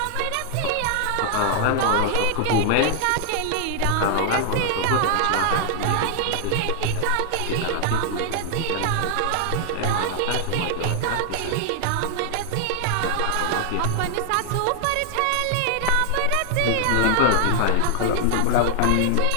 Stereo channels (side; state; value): both; different; correlation 0.00